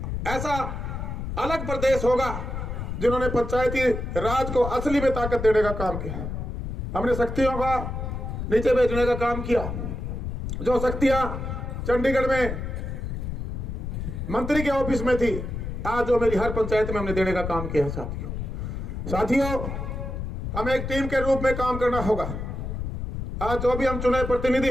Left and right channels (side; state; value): left; noise; rumble, 5 dB below the sound